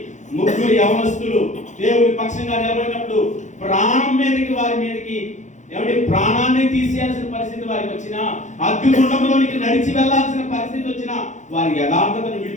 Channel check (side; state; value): right; late; 0.35 ms